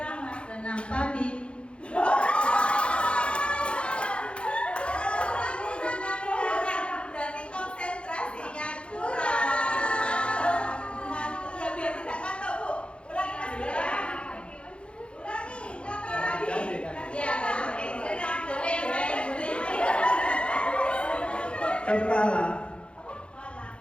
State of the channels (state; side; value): late; right; 0.058 ms